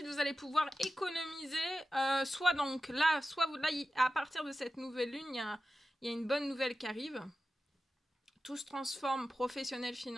vous allez pouvoir économiser. Soit donc là, à partir de cette nouvelle lune, il y a une bonne nouvelle qui arrive. Tout se transforme, professionnel,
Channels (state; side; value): normal; both; correlation 0.93